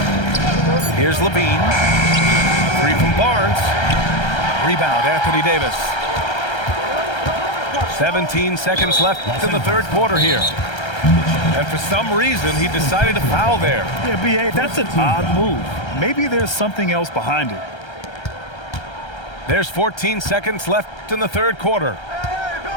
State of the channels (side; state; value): right; late; 1.3 ms